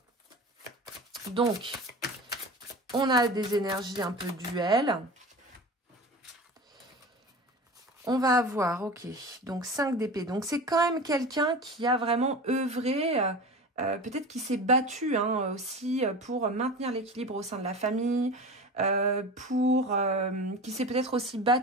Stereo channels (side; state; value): both; normal; correlation 0.32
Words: Donc, on a des énergies un peu duel. On va avoir, ok, donc 5 d'épée. Donc, c'est quand même quelqu'un qui a vraiment œuvré, peut-être qui s'est battu hein, aussi pour maintenir l'équilibre au sein de la famille, qui s'est peut-être aussi